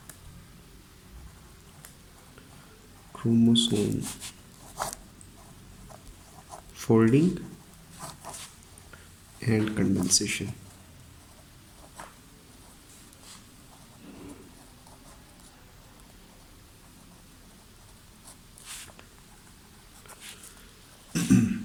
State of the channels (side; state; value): both; identical; correlation 1.00